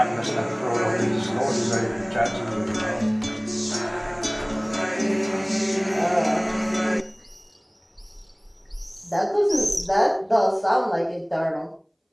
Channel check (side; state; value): both; identical; correlation 1.00